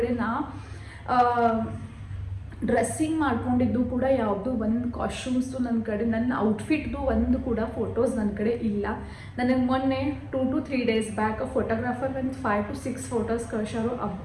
ನಾ ಡ್ರೆಸ್ಸಿಂಗ್ ಮಾಡ್ಕೊಂಡಿದ್ದು ಕೂಡ ಯಾವುದು ಒಂದು ಕಾಸ್ಟ್ಯೂಮ್ಸು ನನ್ನ ಕಡೆ, ನನ್ನ ಔಟ್ಫಿಟ್ದು ಒಂದು ಕೂಡ ಫೋಟೋಸ್ ನನ್ನ ಕಡೆ ಇಲ್ಲ. ನನಗೆ ಮೊನ್ನೆ 2 to 3 days ಬ್ಯಾಕ್ ಫೋಟೋಗ್ರಾಫರ್ ಒಂದು 5 to 6 ಫೋಟೋಸ್ ಕಳ್ಸಾರು.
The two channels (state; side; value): identical; both; correlation 1.00